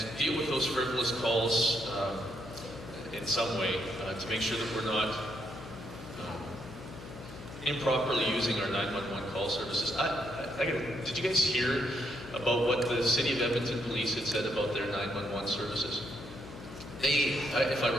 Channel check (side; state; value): left; noise; hum, 14 dB below the sound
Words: deal with those frivolous calls in some way to make sure that we're not improperly using our 911 call services. Did you guys hear about what the City of Edmonton Police had said about their 911 services? If I